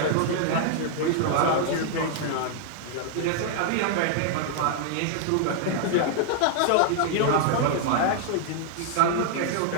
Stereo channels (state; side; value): different; both; correlation -0.01